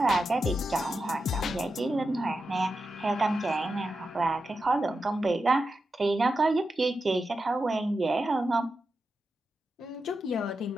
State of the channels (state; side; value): normal; both; correlation 0.89